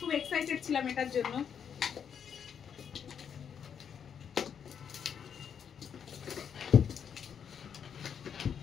এক্সাইটেড ছিলাম এটার জন্য।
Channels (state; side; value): quieter; right; 7.7 dB